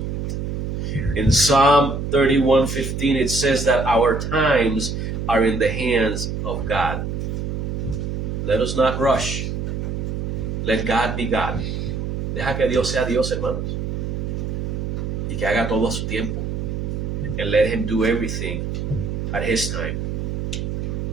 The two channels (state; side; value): noise; right; hum, 3 dB below the sound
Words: In Psalm 31:15, it says that our times are in the hands of God. Let us not rush. Let God be God. Deja que Dios sea Dios, hermanos. Y que haga todo a su tiempo. And let him do everything at his time.